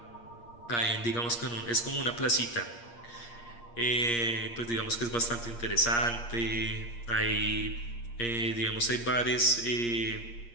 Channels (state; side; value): late; right; 8.5 ms